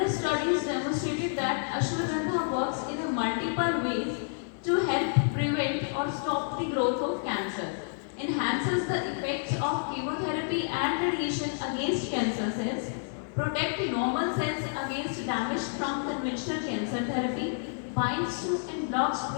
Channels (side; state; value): right; silent; 58 dB below the other